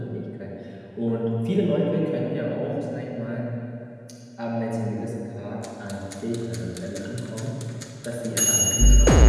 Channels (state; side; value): identical; both; correlation 1.00